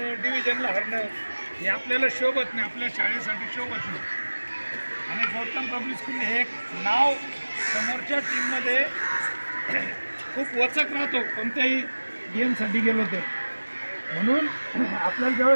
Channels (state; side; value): inverted; both; correlation -1.00